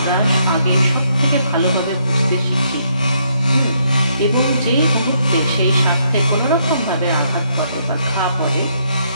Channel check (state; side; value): inverted; both; correlation -0.73